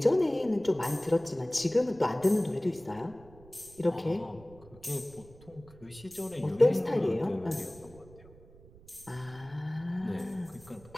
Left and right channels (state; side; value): noise; right; rumble, 22 dB below the sound